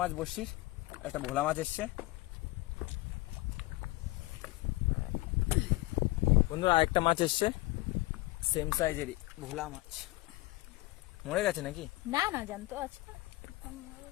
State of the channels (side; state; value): right; quieter; 20.6 dB